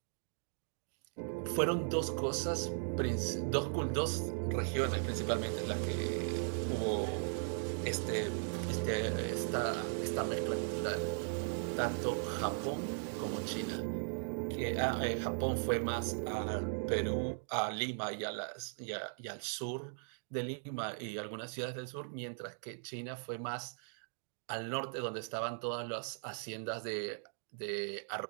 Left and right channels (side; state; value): left; silent; digital silence